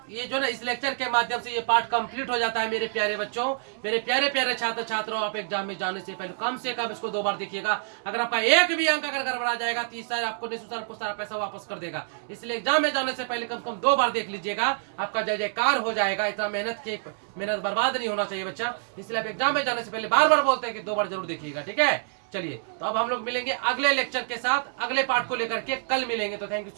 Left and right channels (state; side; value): silent; left; digital silence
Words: ये जो ना इस लेक्चर के माध्यम से ये पार्ट कंप्लीट हो जाता है मेरे प्यारे बच्चों, मेरे प्यारे प्यारे छात्र छात्राओं। आप एग्जाम में जाने से पहले कम से कम इसको 2 बार देखिएगा। अगर आपका एक भी अंक अगर गड़बड़ा जाएगा तो सर आपको निःशुल्क सारा पैसा वापस कर देगा। इसलिए एग्जाम में जाने से पहले कम से कम 2 बार देख लीजिएगा, आपका जय जयकार हो जाएगा। इतना मेहनत बर्बाद नहीं होना चाहिए बच्चा। इसलिए आप एग्जाम में जाने से पहले बार बार बोलते हैं कि 2 बार जरूर देखिएगा, ठीक है। चलिए तो अब हम लोग मिलेंगे अगले लेक्चर के साथ, अगले पार्ट को लेकर के कल मिलेंगे। तो थैंक यू